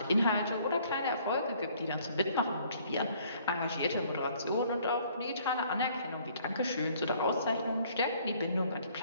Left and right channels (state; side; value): inverted; both; correlation -0.60